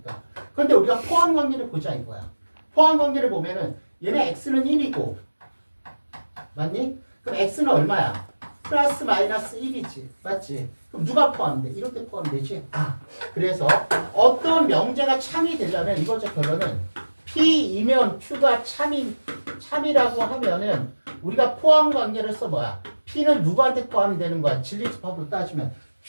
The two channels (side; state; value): both; inverted; correlation -1.00